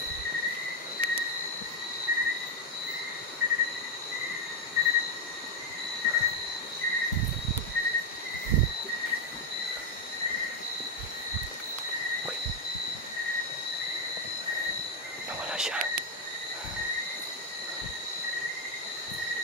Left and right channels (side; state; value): both; normal; correlation 0.04